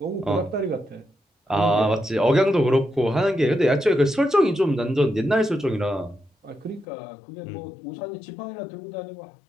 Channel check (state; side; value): drops out; right; at 6.9 s